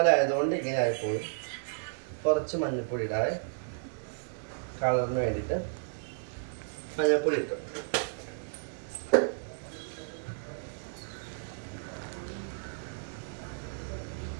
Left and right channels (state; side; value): silent; left; digital silence